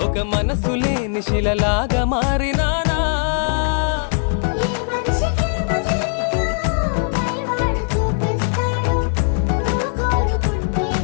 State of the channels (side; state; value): right; silent; 65 dB below the other